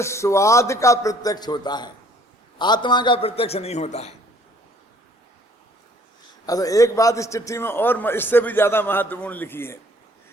स्वाद का प्रत्यक्ष होता है, आत्मा का प्रत्यक्ष नहीं होता है। अच्छा, एक बात इस चिट्ठी में और इससे भी ज्यादा महत्वपूर्ण लिखी है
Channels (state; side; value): normal; both; correlation 0.59